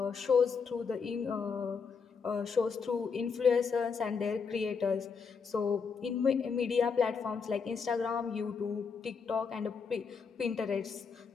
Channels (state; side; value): quieter; right; 5.6 dB